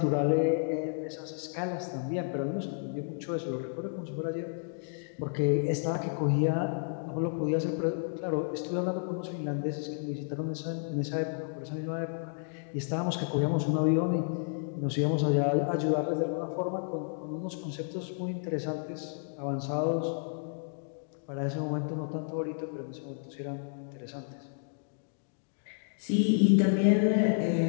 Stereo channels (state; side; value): silent; right; digital silence